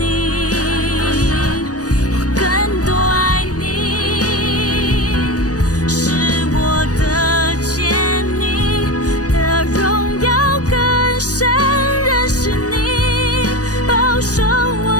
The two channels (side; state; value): right; late; 0.67 ms